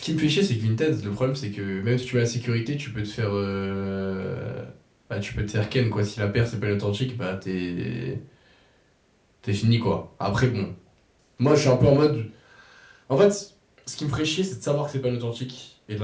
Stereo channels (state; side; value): identical; both; correlation 1.00